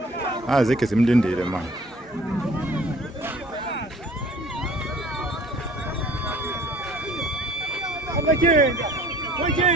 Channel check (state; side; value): normal; both; correlation 0.51